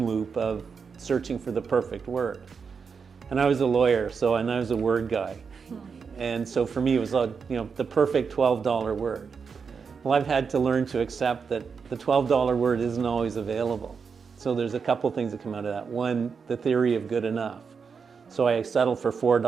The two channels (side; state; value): left; quieter; 5.8 dB